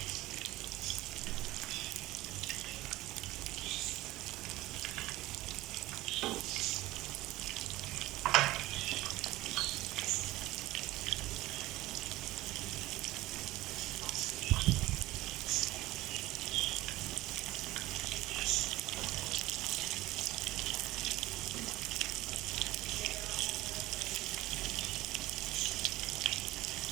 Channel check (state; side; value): quieter; left; 17.8 dB